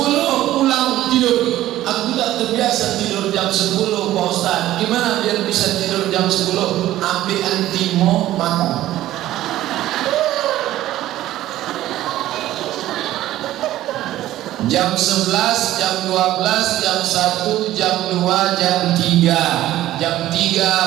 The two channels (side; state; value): left; quieter; 14.3 dB